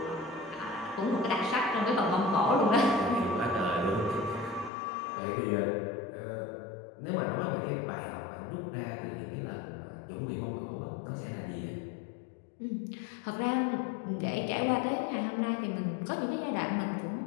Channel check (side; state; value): right; drops out; at 4.7 s